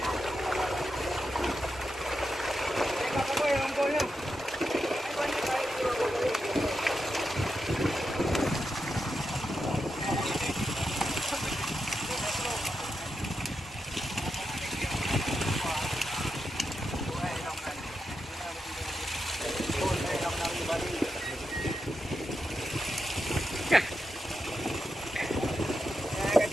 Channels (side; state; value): both; normal; correlation 0.87